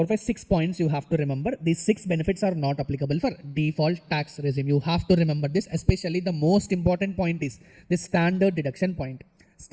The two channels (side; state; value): both; identical; correlation 1.00